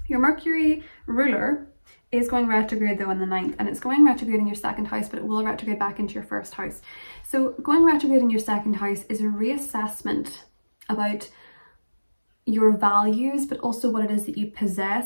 Your Mercury ruler is going retrograde though on the 9th, and it's going retrograde in your 2nd house, but it will retrograde back into your 1st house. So going retrograde in your 2nd house is a reassessment about your values, but also what it is that you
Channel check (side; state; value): both; inverted; correlation -1.00